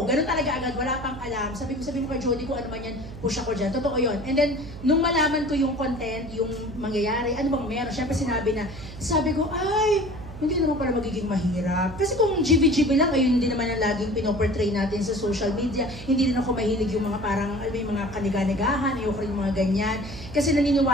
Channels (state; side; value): noise; right; hum, 13 dB below the sound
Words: Ganun talaga agad, wala pang alam. Sabi mo kay Jody kung ano man yan, push ako dyan. Totoo yun. And then, nung malaman ko yung content, yung mangyayari, ano bang meron, syempre sabi ko, ay, hindi naman pala magiging mahirap. Kasi kung GB-GB lang, ayun hindi naman ang laging pinoportray natin sa social media. Hindi rin ako mahilig yung mga parang, yung mga kaniga-nigahan, ayoko rin yung mga ganyan. Kasi